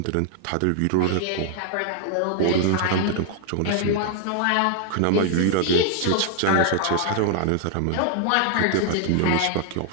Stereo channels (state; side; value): different; both; correlation 0.00